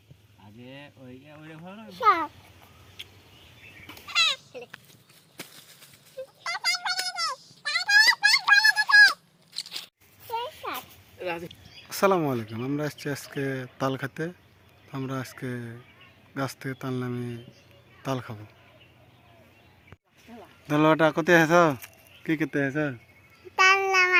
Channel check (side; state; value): both; identical; correlation 1.00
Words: আগে ওই ওইটা ভালো না আসসালামু আলাইকুম। আমরা আসছি আজকে তাল খেতে। আমরা আজকে গাছ থেকে তাল নামিয়ে তাল খাবো। দলটা কোথায় আছো? কি করতে আছো? তাল